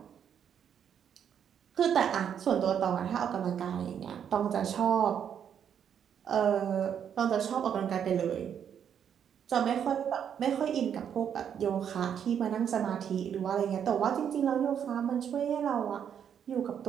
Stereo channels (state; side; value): quieter; left; 8.5 dB